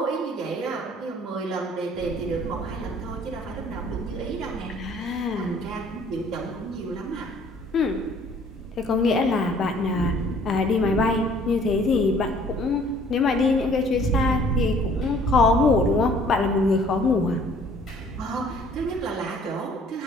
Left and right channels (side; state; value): both; normal; correlation 0.56